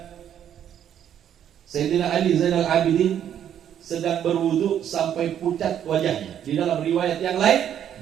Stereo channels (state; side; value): quieter; left; 9.8 dB